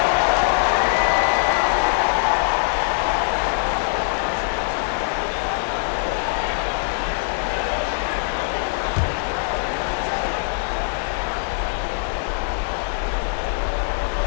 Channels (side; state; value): right; silent; digital silence